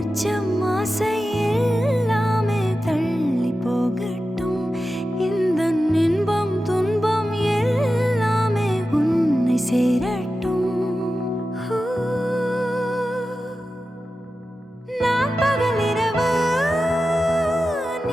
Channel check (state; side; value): normal; both; correlation 0.93